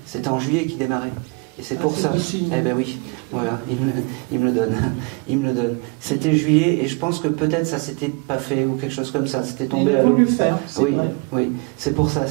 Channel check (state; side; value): quieter; left; 31.3 dB